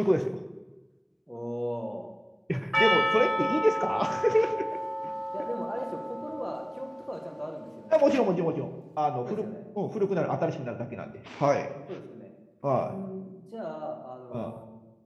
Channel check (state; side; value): identical; both; correlation 1.00